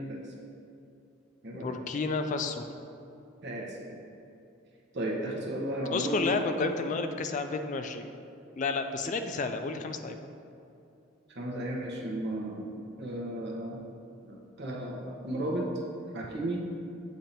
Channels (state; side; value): normal; both; correlation 0.33